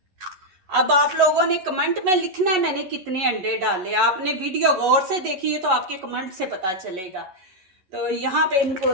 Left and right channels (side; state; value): left; late; 11 ms